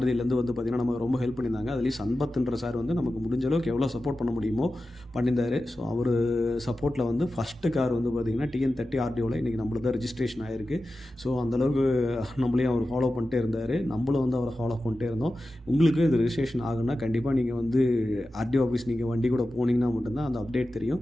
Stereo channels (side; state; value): both; normal; correlation 0.93